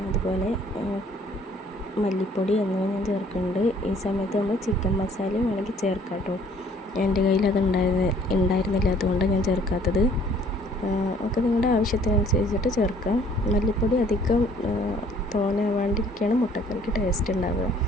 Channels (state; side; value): normal; both; correlation 0.58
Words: അതുപോലെ മല്ലിപ്പൊടി എന്നിവ ഞാൻ ചേർക്കുന്നുണ്ട്. ഈ സമയത്ത് നമ്മൾ ചിക്കൻ മസാലയും വേണമെങ്കിൽ ചേർക്കാം കേട്ടോ. എൻ്റെ കയ്യിൽ അത് ഉണ്ടായിരുന്നില്ല, അതുകൊണ്ടാണ് ഞാൻ ചേർക്കാത്തത്. ഒക്കെ നിങ്ങളുടെ ആവശ്യത്തിനനുസരിച്ചിട്ട് ചേർക്കാം. മല്ലിപ്പൊടി അധികം തോനാവാണ്ടിരിക്കുകയാണ് മുട്ടക്കറിക്ക് ടേസ്റ്റ് ഉണ്ടാവുക.